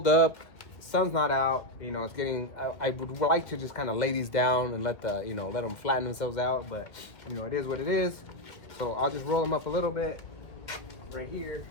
up. Sun's not out, you know, it's getting, I would like to just kind of lay these down and let them flatten themselves out, but you know, it is what it is. So I'll just roll them up a little bit right here.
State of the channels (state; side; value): late; right; 1.9 ms